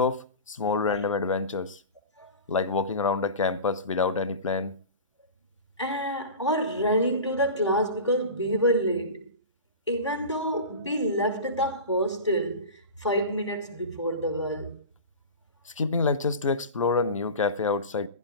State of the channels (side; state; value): both; inverted; correlation -0.31